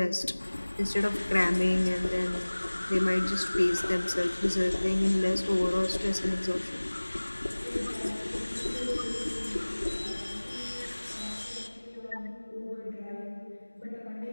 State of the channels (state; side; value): inverted; both; correlation -1.00